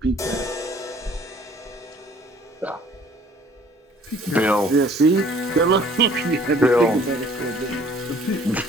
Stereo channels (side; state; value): both; normal; correlation 0.55